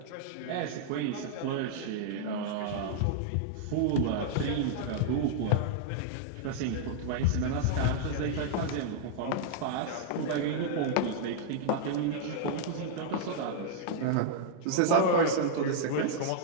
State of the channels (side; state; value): both; different; correlation -0.01